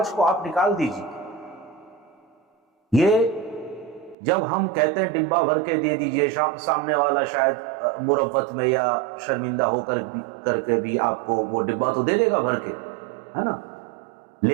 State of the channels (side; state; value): left; drops out; at 4.2 s